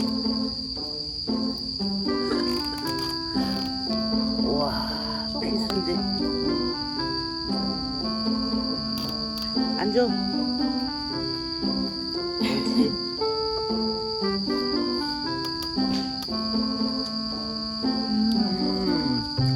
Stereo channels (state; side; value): identical; both; correlation 1.00